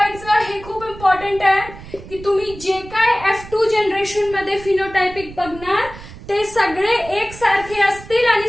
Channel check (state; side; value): noise; right; rumble, 16 dB below the sound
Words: हे खूप इम्पॉर्टंट आहे की तुम्ही जे काय F2 जनरेशन मध्ये फिनोटायपिक बघणार ते सगळे एकसारखे असतील आणि